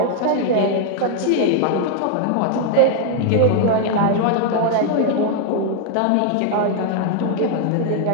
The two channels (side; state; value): both; different; correlation 0.00